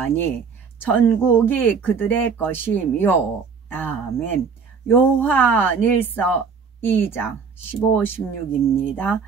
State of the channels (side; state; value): left; quieter; 5.7 dB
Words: 천국이 그들의 것이며. 아멘. 요한일서 2장 15, 16입니다.